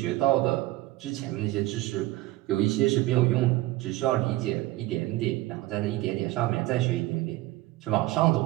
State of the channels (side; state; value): left; quieter; 17.6 dB